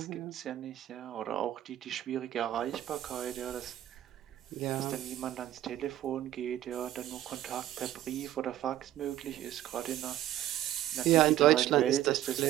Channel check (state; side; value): quieter; left; 13.0 dB